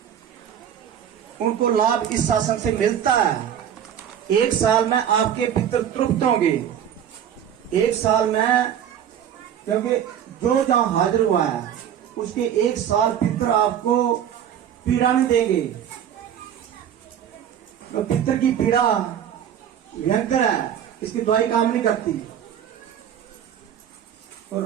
उनको लाभ इस शासन से मिलता है। एक साल में आपके पितर तृप्त होंगे, एक साल में, क्योंकि जो जहां हाजिर हुआ है उसके एक साल पितर आपको पीड़ा नहीं देंगे। तो पितर की पीड़ा भयंकर है, इसकी दवाई काम नहीं करती।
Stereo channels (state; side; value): quieter; left; 9.4 dB